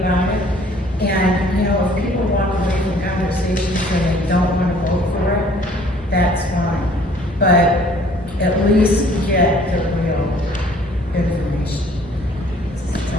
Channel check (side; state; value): both; normal; correlation 0.56